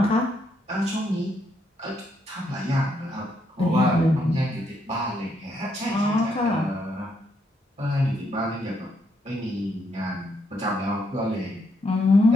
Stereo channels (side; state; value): both; normal; correlation 0.76